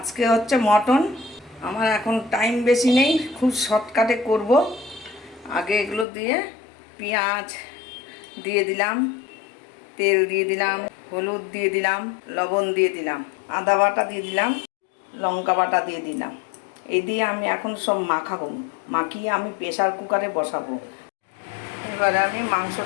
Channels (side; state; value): right; drops out; at 6.1 s